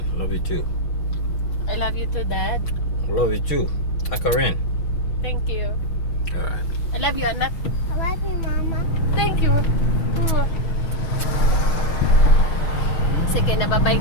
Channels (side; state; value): right; late; 6.3 ms